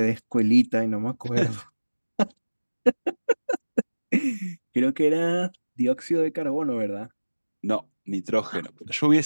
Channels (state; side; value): inverted; both; correlation -1.00